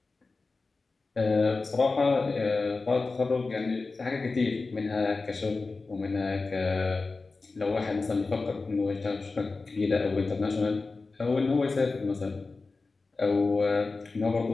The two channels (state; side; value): quieter; right; 3.8 dB